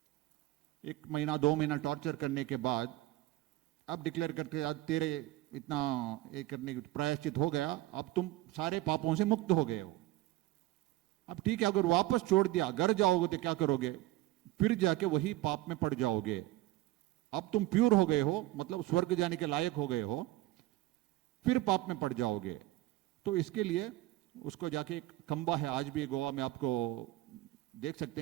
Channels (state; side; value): quieter; left; 16.7 dB